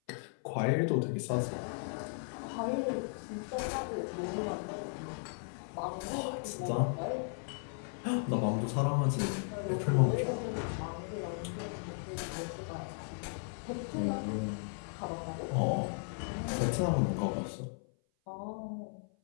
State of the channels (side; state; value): right; silent; 54 dB below the other